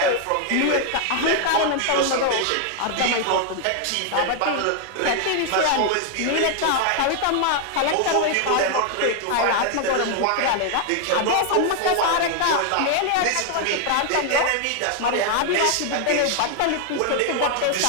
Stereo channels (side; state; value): both; different; correlation 0.00